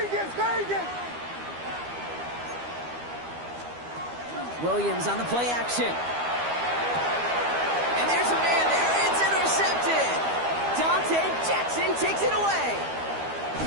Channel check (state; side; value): late; left; 12 ms